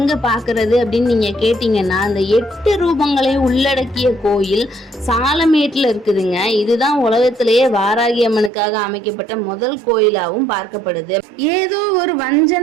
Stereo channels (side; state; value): left; drops out; at 8.5 s